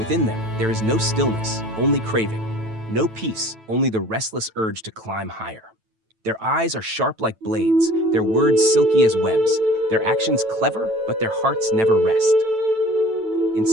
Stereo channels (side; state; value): left; late; 9.1 ms